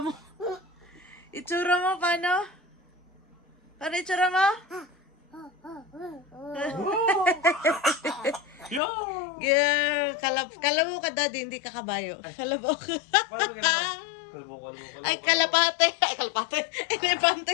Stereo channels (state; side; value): drops out; right; at 8.8 s